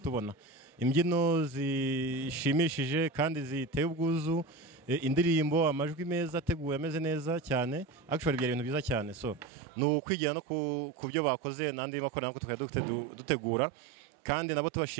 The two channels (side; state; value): left; drops out; at 9.5 s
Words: imbyino zishimishije kandi ziteye ubwuzu, indirimbo, amajwi meza ateguwe ameze neza cyane. Actually byari ibintu byiza cyane. So ni ukwigira no ku byo bakoze n'andi makorali nako tukajya dutegura, kandi nabo